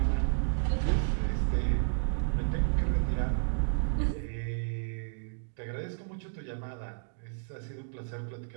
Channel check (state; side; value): silent; left; digital silence